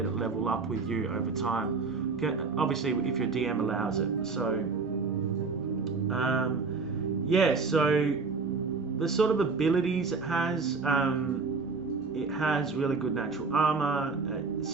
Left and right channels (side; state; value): left; quieter; 4.5 dB